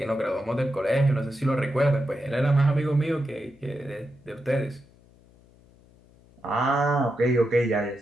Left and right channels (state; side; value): noise; left; hum, 28 dB below the sound